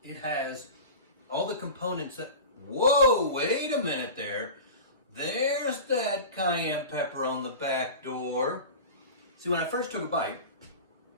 It has all the components that, whoa, wait a minute there. There's that cayenne pepper on the back door. See, when I first took a bite,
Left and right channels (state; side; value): inverted; both; correlation -0.32